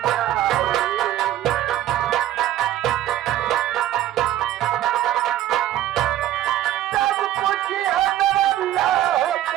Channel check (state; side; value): quieter; left; 13.2 dB